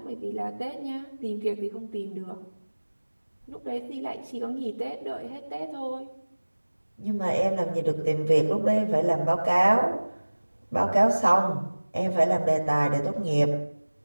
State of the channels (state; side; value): inverted; both; correlation -1.00